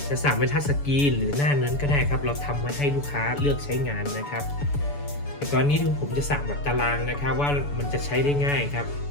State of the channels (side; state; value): right; late; 7.0 ms